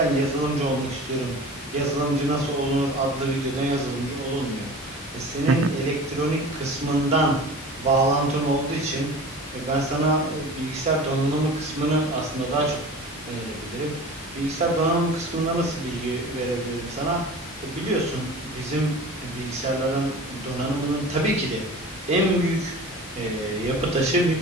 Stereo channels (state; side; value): normal; both; correlation 0.38